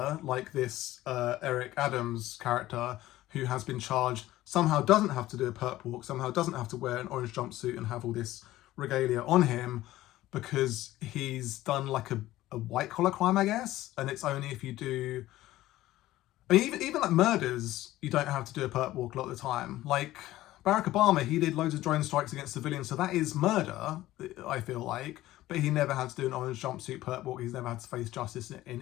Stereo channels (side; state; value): right; quieter; 15.7 dB